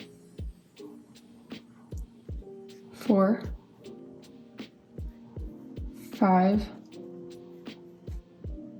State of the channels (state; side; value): identical; both; correlation 1.00